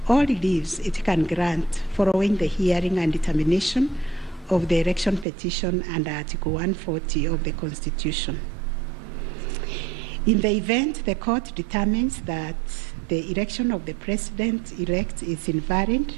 or reliefs it can grant following the hearing and determination of the election petition under Article 140 of the Constitution. In the event the court determines that the election of the President-elect is invalid,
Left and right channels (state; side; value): drops out; left; at 5.2 s